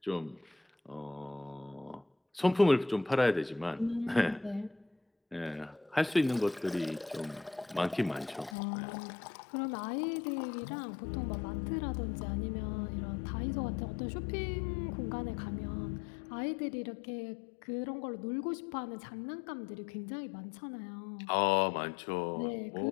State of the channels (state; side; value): drops out; right; at 8.6 s